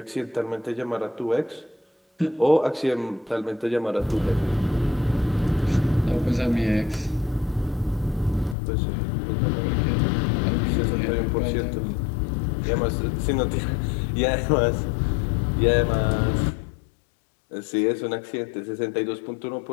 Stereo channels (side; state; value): right; drops out; at 8.6 s